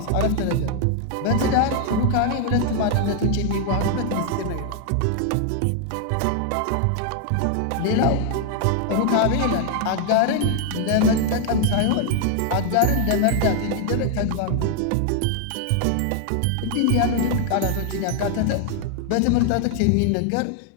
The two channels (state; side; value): different; both; correlation 0.00